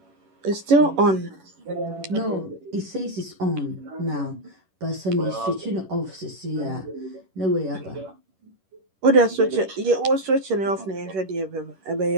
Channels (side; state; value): left; late; 11 ms